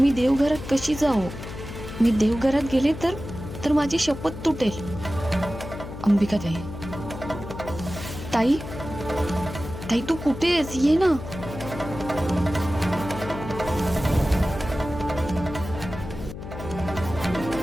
देवघरात कशी जाऊ? मी देवघरात गेले तर माझी शपथ तुटेल। अंबिका ताई, ताई ताई तू कुठे आहेस? ये ना।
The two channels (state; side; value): noise; left; hum, 10 dB below the sound